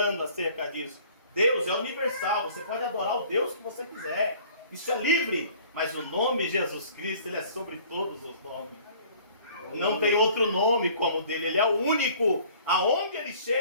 acerca disso. Deus é universal. Você pode adorar o Deus que você quiser. Isso é livre. Mas o nome Jesus Cristo, ele é sobre todos os nomes. Não tem outro nome como o dele. Ele é o único. Aonde ele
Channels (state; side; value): inverted; both; correlation -0.52